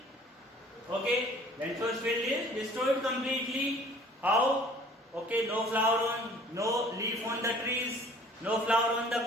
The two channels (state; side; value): normal; both; correlation 0.52